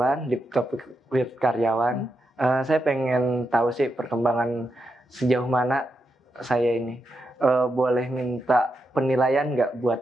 di topik with karyawan, saya pengen tahu sih perkembangan sejauh mana saya ini. Boleh minta penilaian nggak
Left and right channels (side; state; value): both; normal; correlation 0.85